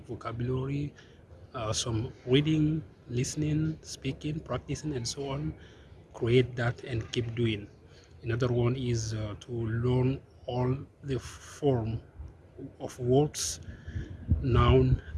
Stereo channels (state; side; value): identical; both; correlation 1.00